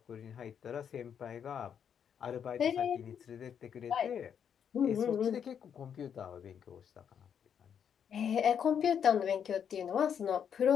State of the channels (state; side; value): quieter; right; 8.0 dB